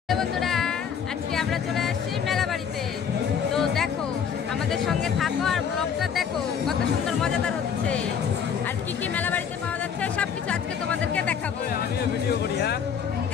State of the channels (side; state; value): right; quieter; 7.4 dB